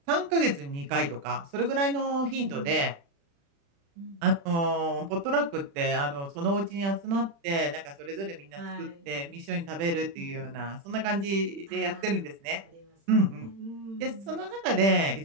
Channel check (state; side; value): late; left; 36 ms